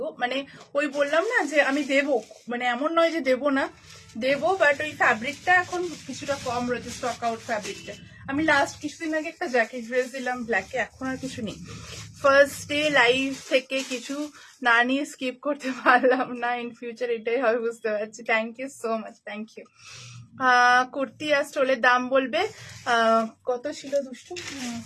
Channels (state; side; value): identical; both; correlation 1.00